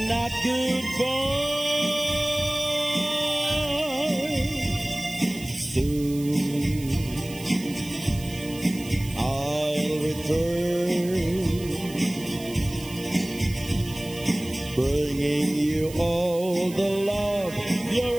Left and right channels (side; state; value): right; noise; hiss, 16 dB below the sound